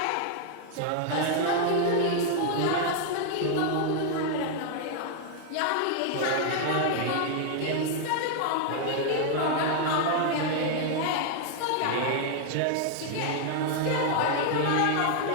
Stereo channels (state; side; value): different; both; correlation 0.00